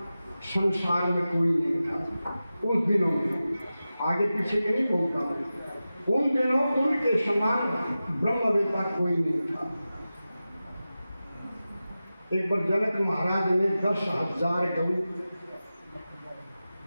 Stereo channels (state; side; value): inverted; both; correlation -0.94